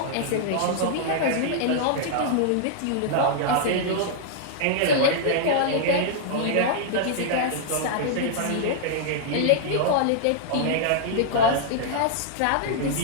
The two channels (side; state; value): both; different; correlation -0.01